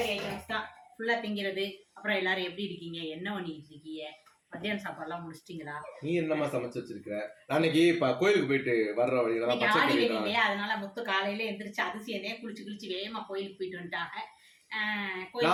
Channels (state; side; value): identical; both; correlation 1.00